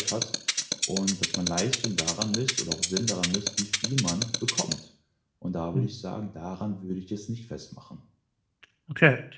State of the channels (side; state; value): both; identical; correlation 1.00